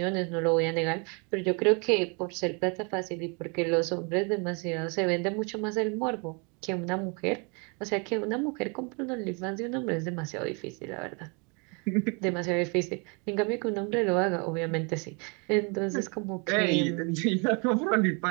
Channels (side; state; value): left; quieter; 33.4 dB